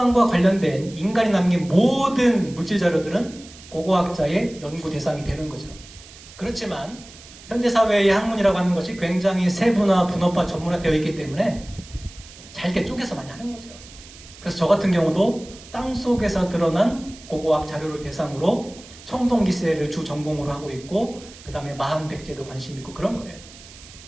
관련된 인간이 남긴 모든 물질 자료들은 고고학자의 연구 대상이 되는 거죠. 그렇지만 현대사회의 학문이라고 하는 것이 굉장히 세분화, 분업화, 전문화되어 있기 때문에 잘게 쪼개서 많이 하는 거죠. 그래서 저 같은 경우도 땅속에서 드러난 고고학 자료를 대상으로 청동기세를 주 전공으로 하고 있고 그 다음에 마한백제도 관심 있고 그런 거예요.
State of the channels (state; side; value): noise; right; hiss, 19 dB below the sound